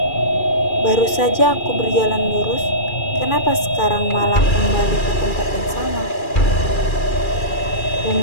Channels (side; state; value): right; late; 2.4 ms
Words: "Baru saja aku berjalan lurus, kenapa sekarang malah kembali ke tempat yang sama?"